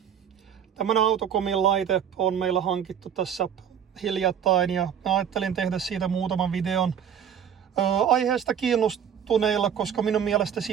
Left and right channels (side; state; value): left; quieter; 8.5 dB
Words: Tämmönen Autocomin laite on meillä hankittu tässä hiljattain ja mä ajattelin tehdä siitä muutaman videon aiheesta kiinnostuneilla, koska minun mielestä